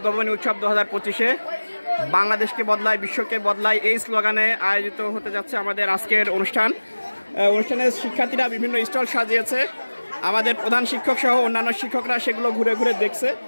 উৎসব 2025-এ বাংলাদেশকে বদলায় বিশ্বকে বদলায় এই স্লোগানে আয়োজিত হতে যাচ্ছে আমাদের আজকের অনুষ্ঠানের শিক্ষার্থীরা বিভিন্ন স্টল সাজিয়েছে। আমাদের প্রধান শিক্ষক সহ অন্যান্য শিক্ষকরা সেগুলো ঘুরে ঘুরে দেখছে।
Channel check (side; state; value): both; inverted; correlation -1.00